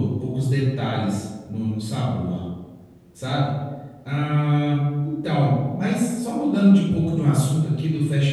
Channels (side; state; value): both; identical; correlation 1.00